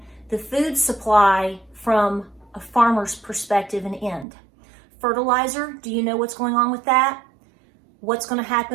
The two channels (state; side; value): drops out; left; at 4.2 s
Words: the food supply from a farmer's perspective and end. Fertilizer, do you know what's going on with that? What's going to